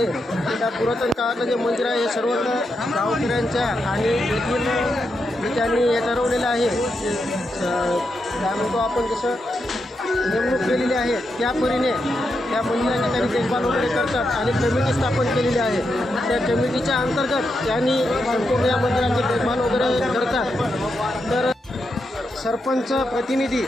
त्या पुरातन काळातलं जे मंदिर आहे हे सर्व गावकऱ्यांच्या आणि येथील त्यांनी हे ठरवलेलं आहे, काय म्हणतो आपण जसं नेमणूक केलेली आहे त्या परीने त्या मंदिराची त्यांनी देखभाल वगैरे करतात आणि कमिटी स्थापन केलेली आहे। त्या कमिटीच्या अंतर्गत त्यांनी संपूर्ण या मंदिराची देखभाल वगैरे करतात। तर सरपंच प्रतिनिधी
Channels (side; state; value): both; normal; correlation 0.84